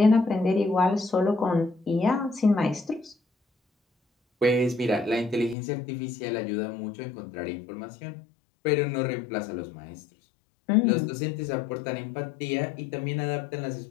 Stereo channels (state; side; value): drops out; right; at 5.6 s